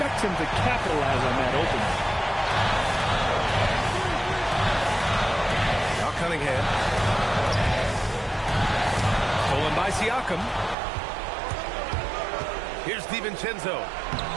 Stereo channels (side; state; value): left; drops out; at 10.8 s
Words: him to capitalize on that opening. Now Cunningham. Stolen by Siakam. Here's DiVincenzo.